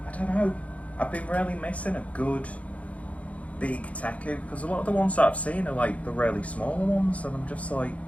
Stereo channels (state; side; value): late; right; 0.066 ms